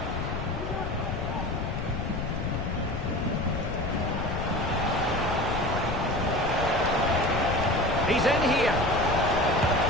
He's in here.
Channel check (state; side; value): noise; left; rumble, 4 dB below the sound